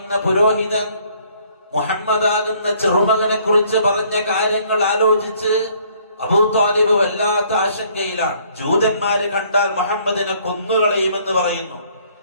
പുരോഹിതൻ മുഹമ്മദാകുന്ന ചെറുമകനെ കുറിച്ച് പറഞ്ഞ കാര്യങ്ങൾ ആലോചിച്ച് അബൂ ത്വാലിബ് വല്ലാത്ത ആശങ്കയിലാണ്. ജൂതന്മാര് കണ്ടാൽ മുഹമ്മദിനെ കൊന്നുകളയുമെന്ന് പറയുന്നു.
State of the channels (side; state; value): both; inverted; correlation -0.62